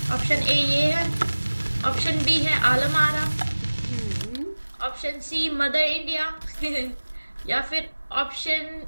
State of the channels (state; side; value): inverted; both; correlation -1.00